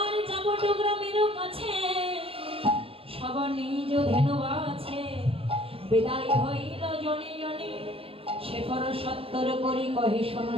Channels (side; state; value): left; late; 0.27 ms